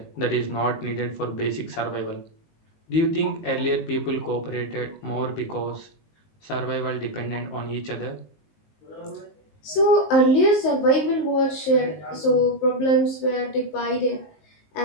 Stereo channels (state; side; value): late; right; 19 ms